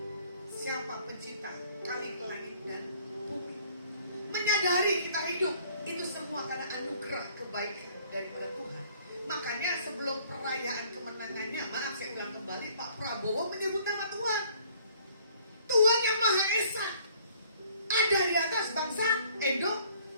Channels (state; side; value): inverted; both; correlation -0.58